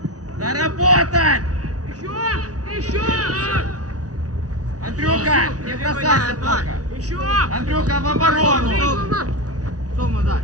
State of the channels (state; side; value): late; left; 0.68 ms